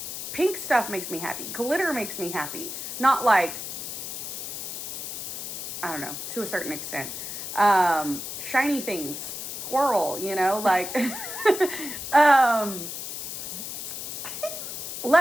Pink stuff makes me happy. Glitter makes me happy. Not like, I don't know, to a certain extent. Shiny things. Squirrel, like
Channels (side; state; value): left; noise; hiss, 6 dB below the sound